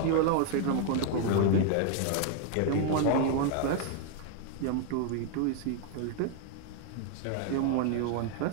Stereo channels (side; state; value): both; different; correlation 0.00